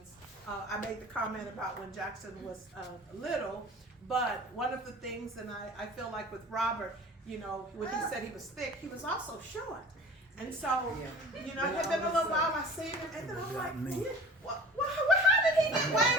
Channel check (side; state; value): both; normal; correlation 0.41